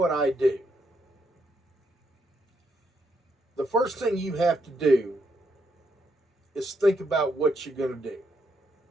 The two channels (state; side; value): normal; both; correlation 0.77